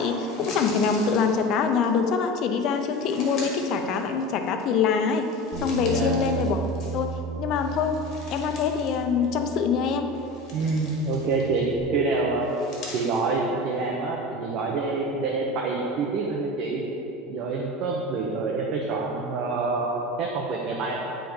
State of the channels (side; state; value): both; normal; correlation 0.31